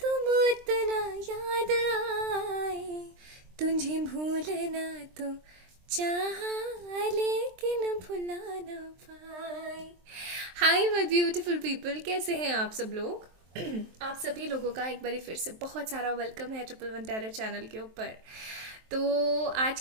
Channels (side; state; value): left; late; 23 ms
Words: उतना याद आए, तुझे भूलना तो चाहा लेकिन भुला ना पाए। हाय माय ब्यूटीफुल पीपल, कैसे हैं आप सब लोग? आप सभी लोगों का एक बार फिर से बहुत सारा वेलकम है ट्रिपल वन टेरर चैनल के ऊपर। तो आज